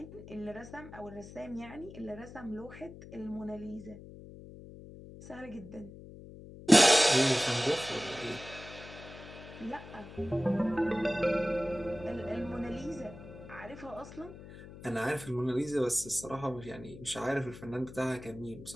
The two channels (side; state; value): left; noise; hum, 15 dB below the sound